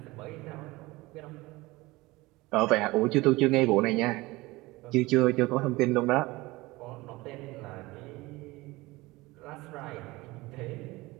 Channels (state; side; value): quieter; left; 21.0 dB